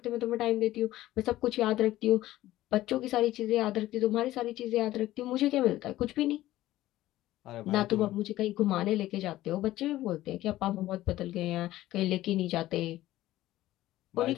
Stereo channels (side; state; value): right; quieter; 15.4 dB